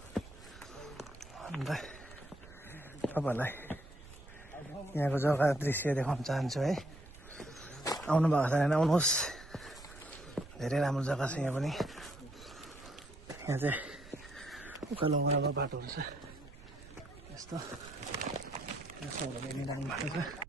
अन्त तपाईहरुलाई यहाँको जग्गा दृश्य देखाउन चाहन्छु है। आउनु भएको छैन भने आउनुहोस्। धेरै राम्रो जग्गा छ यहाँ पनि। यहाँ चाहिँ उकालो उकालो बाटोहरु छ। यस्तो सबैले राम्रो बाटो छ।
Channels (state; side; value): noise; right; rumble, 18 dB below the sound